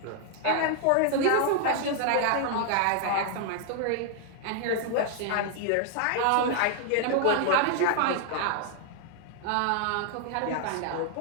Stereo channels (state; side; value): different; both; correlation 0.00